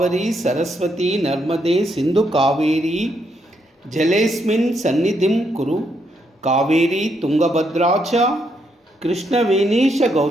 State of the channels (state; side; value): normal; both; correlation 0.77